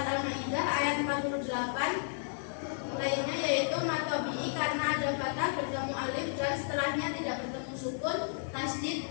Al-Maidah ayat 48 lainnya yaitu matobi'i karena ada fathah bertemu alif dan setelahnya tidak bertemu sukun. Tasdid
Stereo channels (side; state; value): right; silent; 56 dB below the other